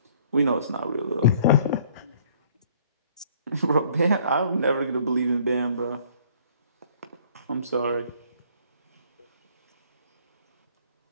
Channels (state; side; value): inverted; both; correlation -0.58